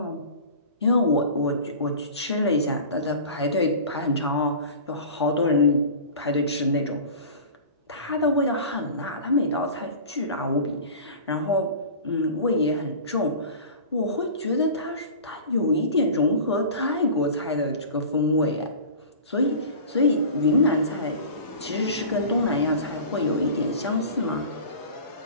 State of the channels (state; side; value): inverted; both; correlation -0.37